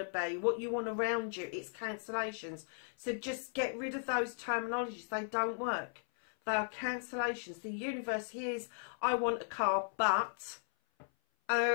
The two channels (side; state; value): right; silent; 53 dB below the other